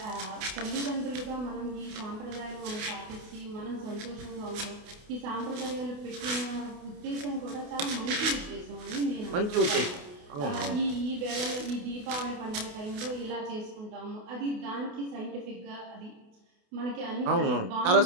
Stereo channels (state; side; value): late; left; 28 ms